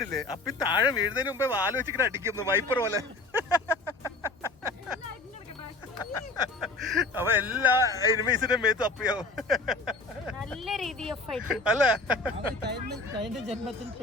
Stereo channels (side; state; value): right; quieter; 3.2 dB